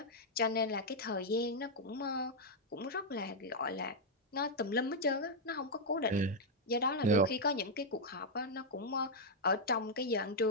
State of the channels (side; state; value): both; normal; correlation -0.03